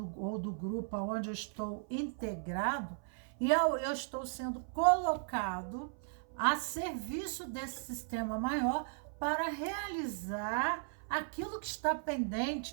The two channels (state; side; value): silent; left; 53 dB below the other